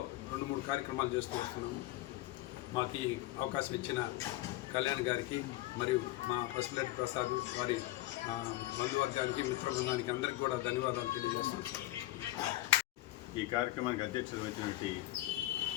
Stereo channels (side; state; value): right; quieter; 17.3 dB